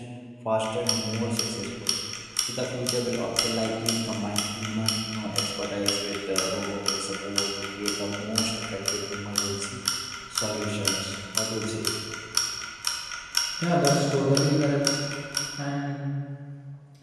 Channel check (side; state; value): both; identical; correlation 1.00